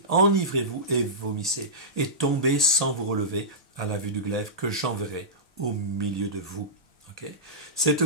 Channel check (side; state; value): both; normal; correlation -0.16